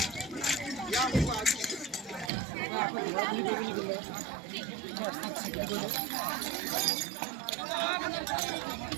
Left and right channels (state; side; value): drops out; left; at 2.3 s